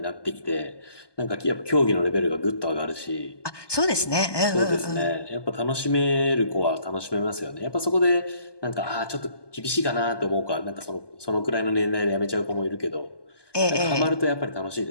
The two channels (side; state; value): right; late; 1.2 ms